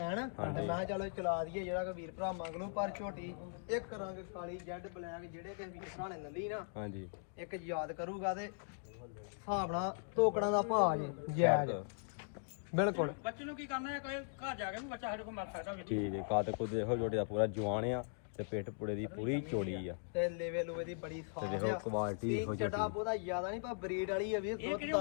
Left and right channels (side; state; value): right; silent; digital silence